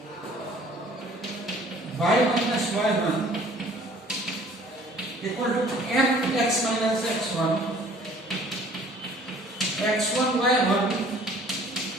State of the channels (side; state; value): both; normal; correlation 0.53